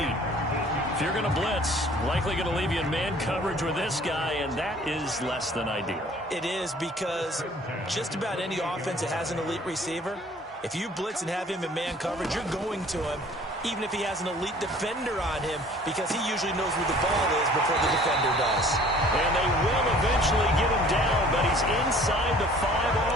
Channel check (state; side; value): normal; both; correlation 0.52